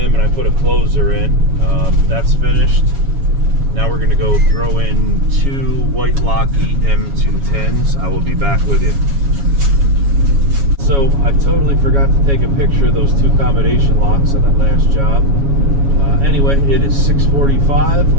and I put a closer in. That's finished. Now we're going to go throw in 2 white Locky M210s. I will be back with you. So I totally forgot to take a picture of those 2 combination locks on that last job. Anyway, it is 6:45.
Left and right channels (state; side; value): late; left; 7.2 ms